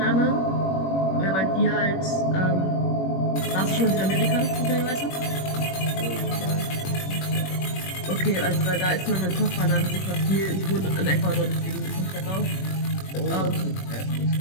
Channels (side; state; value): right; late; 21 ms